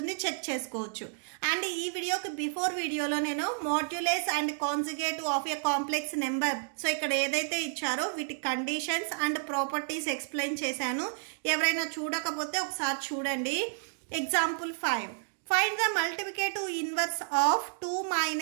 చెక్ చేసుకోవచ్చు. అండ్ ఈ వీడియోకి బిఫోర్ వీడియోలో నేను modulus and conjugate of a complex number, so ఇక్కడ ఏదైతే ఇచ్చారో వీటి కండిషన్స్ అండ్ ప్రాపర్టీస్ ఎక్స్ప్లెయిన్ చేశాను. ఎవరైనా చూడకపోతే ఒకసారి చూడండి. Example 5, find the multiplicative inverse of 2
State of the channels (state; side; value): silent; left; digital silence